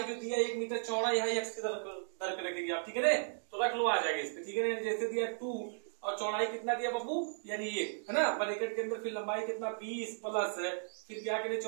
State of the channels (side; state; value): left; silent; digital silence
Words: जो दिया 1 मीटर चौड़ाई है, x की तरफ रखेंगे आप, ठीक है ना। तो रख लो, आ जाएगा इस पे, ठीक है ना। जैसे दिया 2 और चौड़ाई कितना दिया बाबू, यानी 1 है ना, ब्रैकेट के अंदर फिर लंबाई कितना 20 प्लस फिर क्या करें